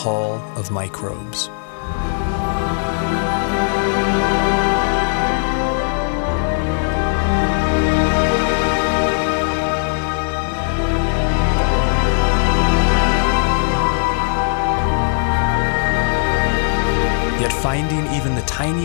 of Microbes. Yet finding even the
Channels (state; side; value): silent; right; digital silence